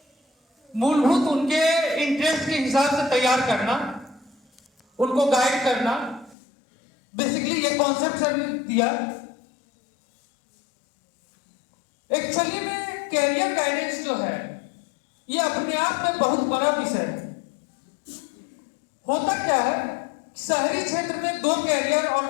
मूलभूत उनके इंटरेस्ट के हिसाब से तैयार करना, उनको गाइड करना, बेसिकली ये कॉन्सेप्ट सर ने दिया। एक्चुअली में कैरियर गाइडेंस जो है ये अपने आप में बहुत बड़ा विषय है। होता क्या है, शहरी क्षेत्र में 2 कैरियर और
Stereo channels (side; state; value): right; drops out; at 6.4 s